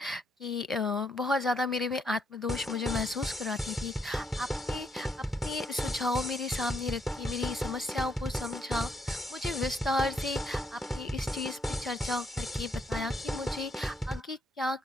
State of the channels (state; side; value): normal; both; correlation 0.74